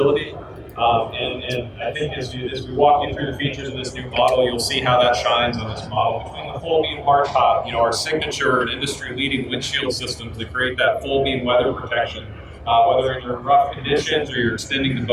And I think as we walk you through the features of this new model, you'll see how that shines on this model. Between the full beam hardtop, our signature and industry-leading windshield systems that create that full beam weather protection, whether you're in rough conditions or you're extending the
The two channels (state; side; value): identical; both; correlation 1.00